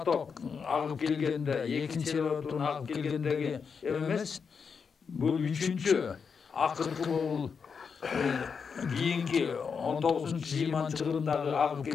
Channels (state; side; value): quieter; right; 5.9 dB